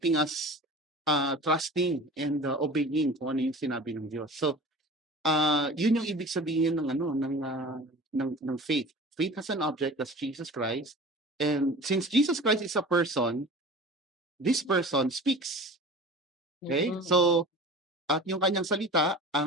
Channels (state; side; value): normal; both; correlation 0.38